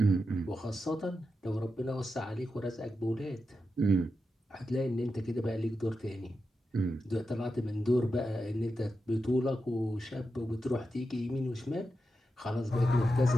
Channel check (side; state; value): both; normal; correlation 0.89